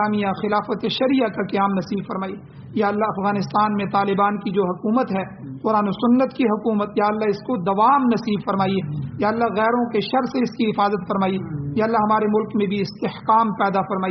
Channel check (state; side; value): identical; both; correlation 1.00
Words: خلافت شریعہ کا قیام نصیب فرمائیے. یا اللہ افغانستان میں طالبان کی جو حکومت ہے، قرآن و سنت کی حکومت، یا اللہ اس کو دوام نصیب فرمائیے. یا اللہ غیروں کے شر سے اس کی حفاظت فرمائیے. یا اللہ ہمارے ملک میں بھی استحکام پیدا